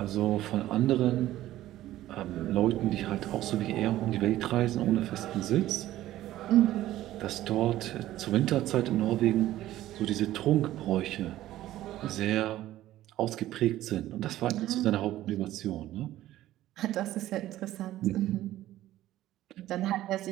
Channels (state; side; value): quieter; left; 14.4 dB